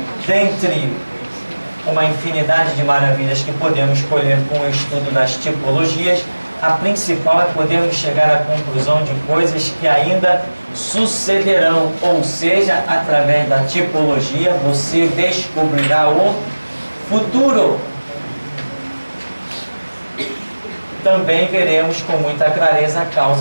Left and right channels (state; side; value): inverted; both; correlation -1.00